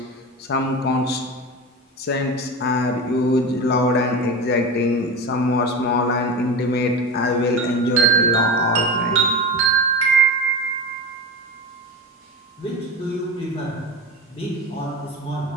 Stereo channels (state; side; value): normal; both; correlation 0.25